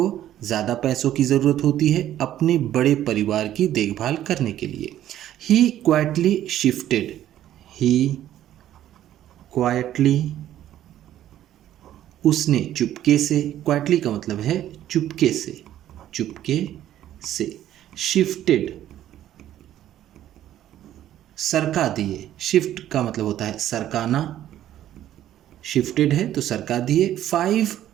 ज़्यादा पैसों की ज़रूरत होती है अपने बड़े परिवार की देखभाल करने के लिए। ही क्वाइटली, उसने चुपके से, क्वाइटली का मतलब है चुपके से। शिफ्टेड, सरका दिए, शिफ्ट का मतलब होता है सरकाना, शिफ्टेड है तो सरका दिए। 5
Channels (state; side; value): quieter; left; 12.2 dB